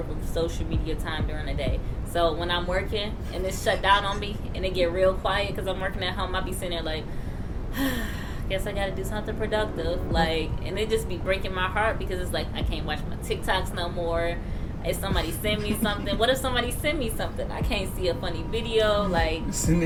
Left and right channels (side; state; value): both; identical; correlation 1.00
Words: of social media time during the day. So when I'm working and it's shut down on me and it get real quiet because I'm working at home, I be sitting there like, guess I got to do something productive. Like, and it just be breaking my heart because it's like I can't watch my TikToks no more. If somebody send me something, what if somebody send me something? I can't see a funny video. Like,